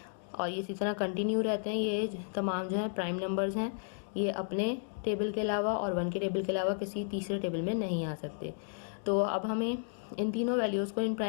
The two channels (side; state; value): right; silent; digital silence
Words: और ये इसी तरह कंटिन्यू रहते हैं। ये तमाम जो है प्राइम नंबर्स हैं, ये अपने टेबल के अलावा और वन के टेबल के अलावा किसी तीसरे टेबल में नहीं आ सकते। तो अब हमें इन तीनों वैल्यूज़ को इन